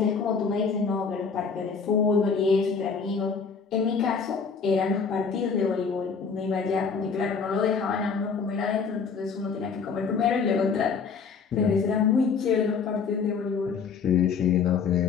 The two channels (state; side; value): quieter; right; 5.6 dB